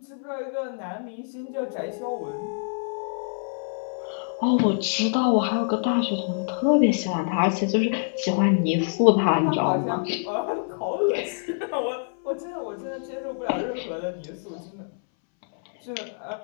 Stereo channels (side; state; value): right; silent; 61 dB below the other